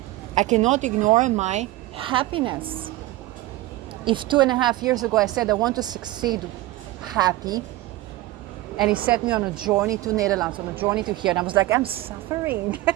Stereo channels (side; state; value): left; quieter; 17.3 dB